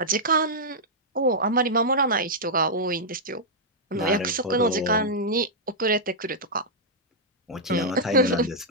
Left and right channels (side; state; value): both; normal; correlation -0.08